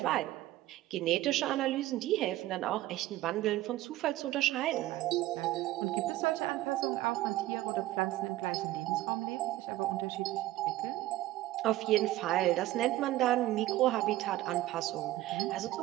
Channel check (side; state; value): left; quieter; 16.1 dB